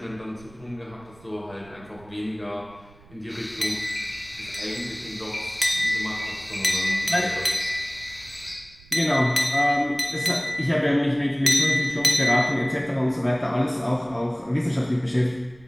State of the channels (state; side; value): noise; right; rumble, 24 dB below the sound